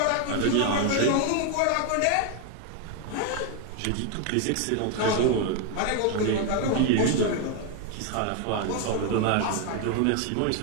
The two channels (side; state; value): both; different; correlation 0.01